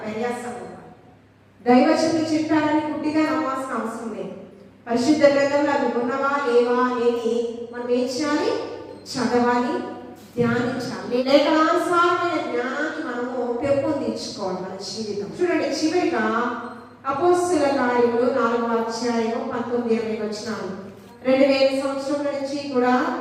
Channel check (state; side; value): identical; both; correlation 1.00